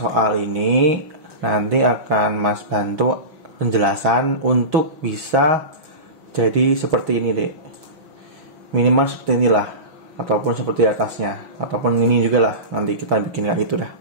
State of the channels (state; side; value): late; left; 6.2 ms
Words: ini nanti akan Mas bantu penjelasan untuk bisa jadi seperti ini dek, minimal seperti inilah, ataupun seperti atasnya, ataupun ini juga lah, nanti kita bikin kayak gitu dah.